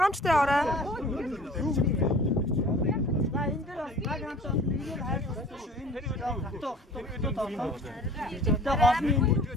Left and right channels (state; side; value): normal; both; correlation 0.46